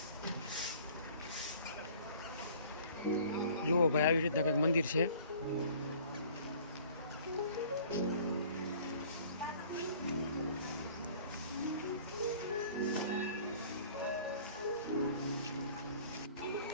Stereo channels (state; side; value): inverted; both; correlation -0.51